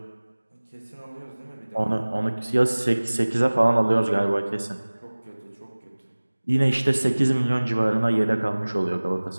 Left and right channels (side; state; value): both; inverted; correlation -1.00